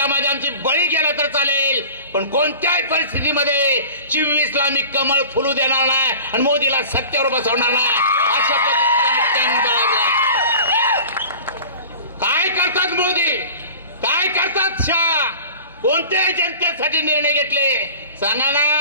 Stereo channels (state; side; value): inverted; both; correlation -0.41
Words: आमची बळी गेला तर चालेल, पण कोणत्याही परिस्थितीमध्ये 24ला मी कमळ फुलू देणार नाही आणि मोदीला सत्तेवर बसवणार नाही. अशा पद्धतीने काय करतात मोदी, काय करतात शाह, कोणत्याही जनतेसाठी निर्णय घेतले सांगा